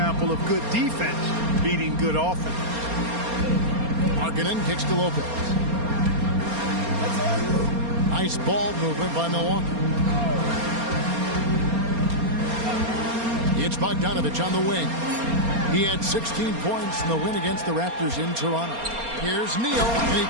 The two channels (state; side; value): late; left; 4.3 ms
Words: of good defense beating good offense. Markkanen kicks to Lopez. Nice ball movement by Milwaukee. It's Bogdanovich on the wing. He had 16 points in the win against the Raptors in Toronto. Here's Neal, and he